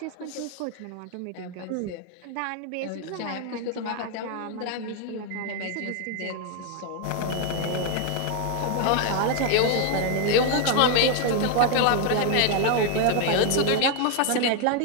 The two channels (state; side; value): different; both; correlation 0.00